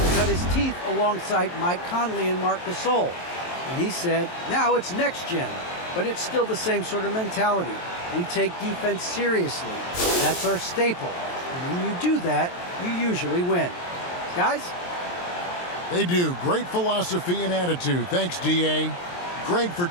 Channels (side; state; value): right; late; 23 ms